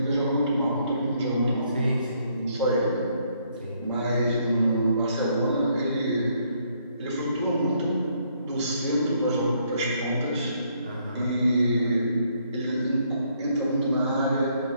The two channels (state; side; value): inverted; both; correlation -0.70